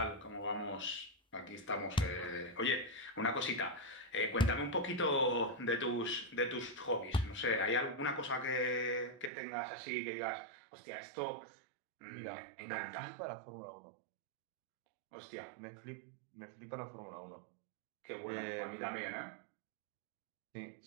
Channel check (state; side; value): drops out; left; at 9.3 s